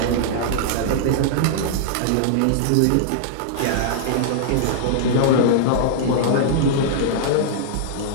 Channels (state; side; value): different; both; correlation -0.01